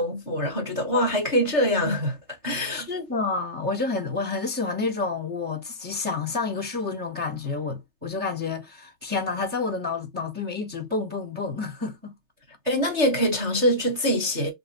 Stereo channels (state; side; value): late; left; 3.3 ms